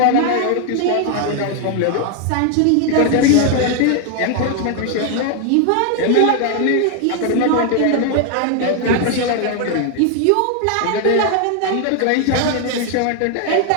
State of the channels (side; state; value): both; different; correlation 0.00